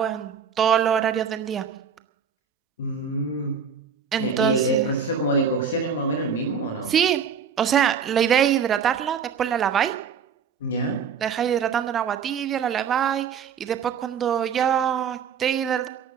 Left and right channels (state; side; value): quieter; left; 6.9 dB